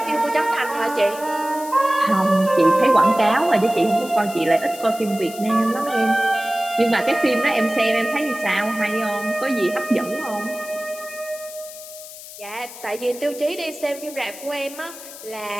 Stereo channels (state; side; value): noise; left; hiss, 15 dB below the sound